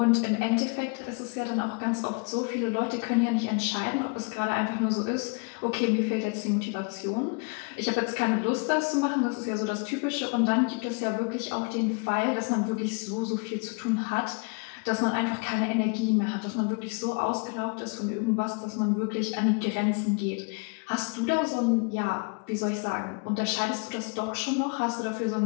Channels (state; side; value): quieter; right; 32.8 dB